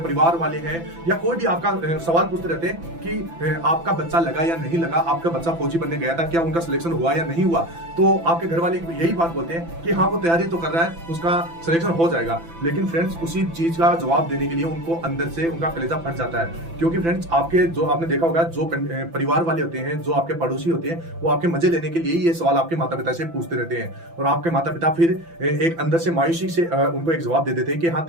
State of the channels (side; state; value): left; late; 6.0 ms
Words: वाले हैं, या कोई भी आपका सवाल पूछते रहते हैं कि आपका बच्चा लगा या नहीं लगा, आपका बच्चा फौजी बनने गया था, क्या उनका सिलेक्शन हुआ या नहीं हुआ। तो आपके घर वाले यही बात बोलते हैं कि हाँ वो तैयारी तो कर रहा है, उसका सिलेक्शन हो जाएगा। लेकिन फ्रेंड्स उसी चीज का जवाब देने के लिए उनको अंदर से उनका कलेजा फट जाता है। क्योंकि फ्रेंड्स आपके जो आपने देखा होगा, जो परिवार वाले होते हैं, जो आपके पड़ोसी होते हैं, वो आपके मजे लेने के लिए ये सवाल आपके माता पिता से पूछते रहते हैं। और आपके माता पिता फिर एक अंदर से मायूसी से उनको एक जवाब दे देते हैं कि हाँ